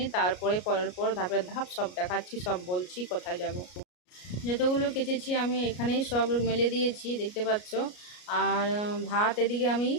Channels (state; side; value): late; right; 33 ms